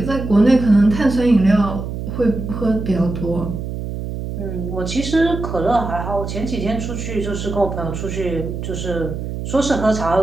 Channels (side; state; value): right; noise; hum, 6 dB below the sound